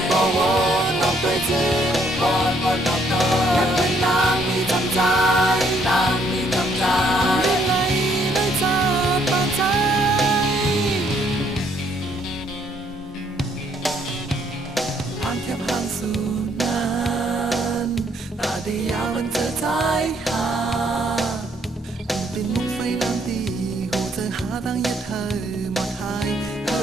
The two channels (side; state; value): both; normal; correlation 0.68